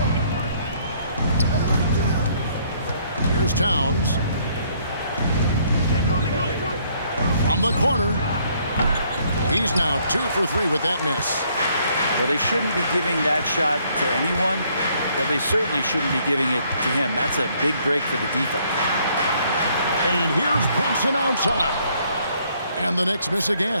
Here's Towns. From the corner. He's now 2 for 3 with that miss. Well, they shouldn't be giving that shot to anyone, but they certainly shouldn't be giving it to him. That's a big break for the defense. And here's Brunson outside. And the Knicks miss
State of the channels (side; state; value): both; inverted; correlation -0.66